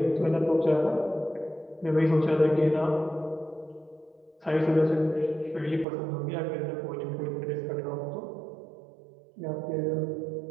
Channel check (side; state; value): left; drops out; at 5.9 s